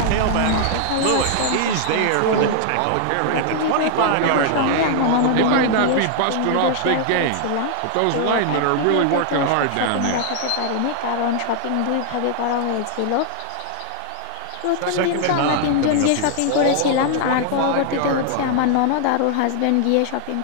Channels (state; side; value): different; both; correlation 0.00